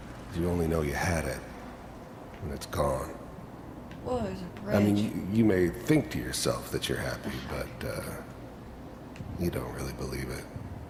you only know you had it when it's gone. Whoa, there's a bridge. I mean, you may think to yourself that you're happy, but you don't really believe it.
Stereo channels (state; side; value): identical; both; correlation 1.00